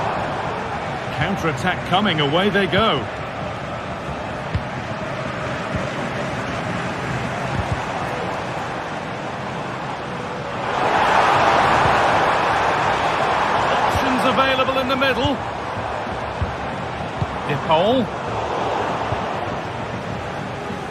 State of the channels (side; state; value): both; identical; correlation 1.00